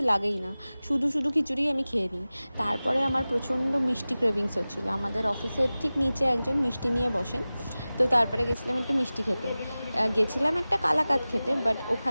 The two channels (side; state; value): both; inverted; correlation -0.97